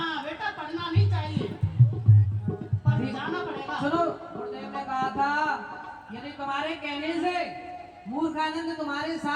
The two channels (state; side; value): identical; both; correlation 1.00